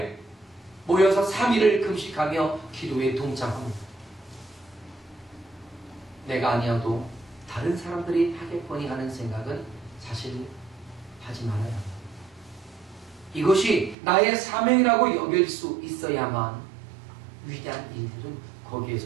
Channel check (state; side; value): drops out; left; at 14.0 s